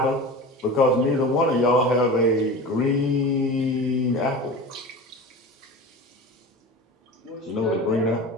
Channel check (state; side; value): normal; both; correlation 0.32